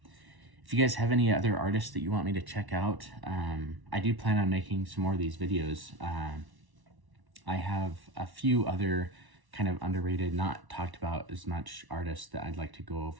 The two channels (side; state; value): left; late; 1.1 ms